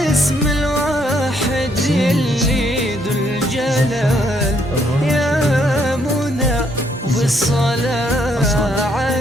الواحد اللي ذو الجلال، يا منى بالصلاة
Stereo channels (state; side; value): normal; both; correlation 0.71